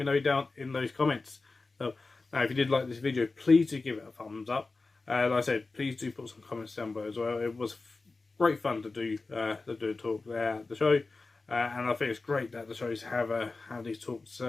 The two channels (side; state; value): right; quieter; 3.7 dB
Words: know down in those comments. Now if you did like this video, please do give it a thumbs up. Like I said, please do put some comments down below as well. It was great fun to do a talk there at the show. And I think it's great that the shows have these talks